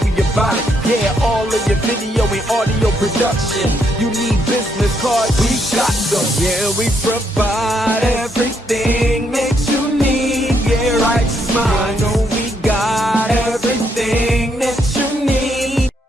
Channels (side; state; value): both; normal; correlation 0.75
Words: we about it. Yeah, all of your video and audio production. You need business cards, we got them. Yeah, we provide everything.